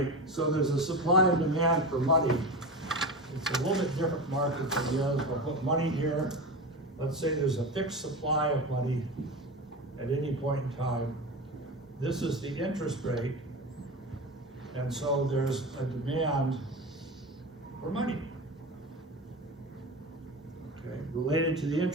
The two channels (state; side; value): normal; both; correlation 0.25